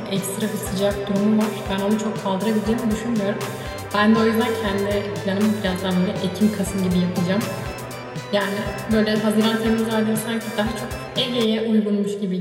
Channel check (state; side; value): identical; both; correlation 1.00